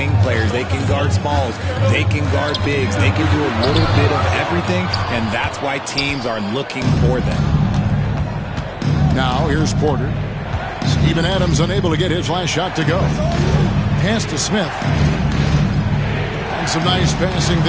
players. They can guard smalls, they can guard bigs, they can do a little bit of everything, and that's why teams are looking for them. Now, here's Porter. Steven Adams unable to get his last shot to go. Pass to Smith. And some nice passing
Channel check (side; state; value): both; identical; correlation 1.00